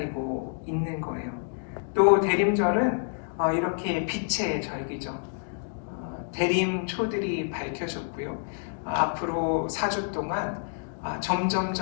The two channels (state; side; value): silent; right; digital silence